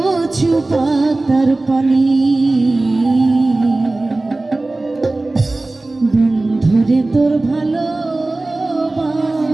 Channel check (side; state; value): left; quieter; 3.0 dB